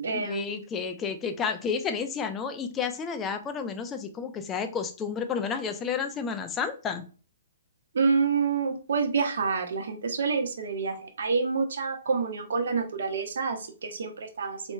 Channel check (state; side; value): inverted; both; correlation -0.43